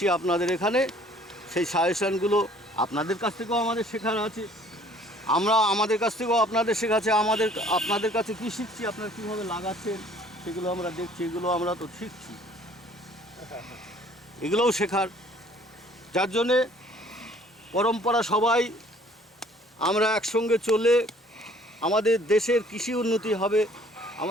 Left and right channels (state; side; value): normal; both; correlation 0.56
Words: আপনাদের এখানে। সেই সাজেশনগুলো আপনাদের কাছ থেকেও আমাদের শেখার আছে, আমাদের কাছ থেকেও আপনাদের শেখাচ্ছে। আপনাদের কাছে কী শিখছি, আপনারা কীভাবে লাগাচ্ছেন সেগুলো আমরা দেখছি, এগুলো আমরা তো শিখছি, এগুলোও শেখার। যার জন্যে পরম্পরা সবাই আমরা একসঙ্গে চলে আমাদের দেশের কৃষি উন্নতি হবে,